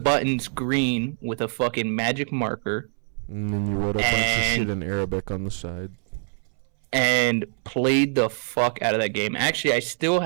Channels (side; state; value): left; silent; 62 dB below the other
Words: green with a fucking magic marker, And then you wrote a bunch of shit in Arabic on the side. and played the fuck out of that game. Actually, I still